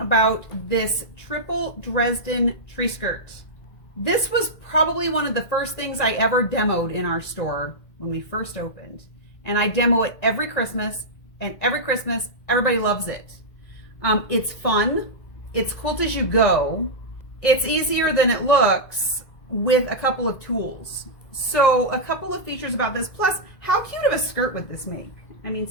this triple Dresden tree skirt. This was probably one of the first things I ever demoed in our store when we first opened. And I demo it every Christmas, and every Christmas, everybody loves it. It's fun. It's Quilt-As-You-Go. It's easier than it looks with a couple of tools. So a couple of features about this, plus how cute of a skirt would this make? I mean,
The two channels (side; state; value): right; late; 2.0 ms